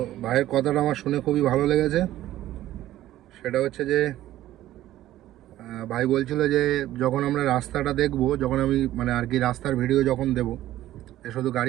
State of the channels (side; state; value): left; quieter; 14.1 dB